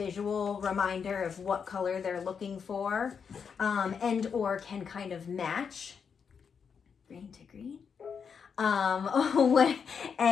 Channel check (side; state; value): right; quieter; 6.5 dB